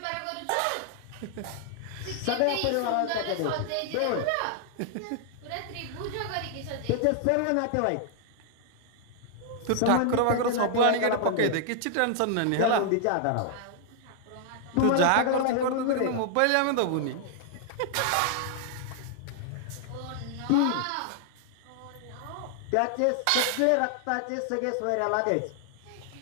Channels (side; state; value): both; different; correlation 0.00